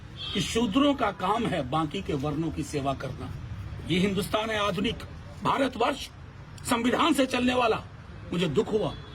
कि शूद्रों का काम है बाकी के वर्णों की सेवा करना। ये हिंदुस्तान है आधुनिक भारतवर्ष, संविधान से चलने वाला। मुझे दुख हुआ।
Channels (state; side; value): identical; both; correlation 1.00